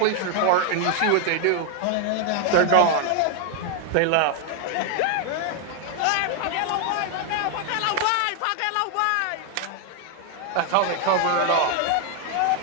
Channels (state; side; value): different; both; correlation 0.00